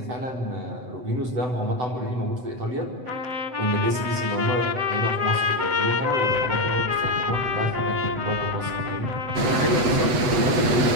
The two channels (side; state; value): left; late; 8.0 ms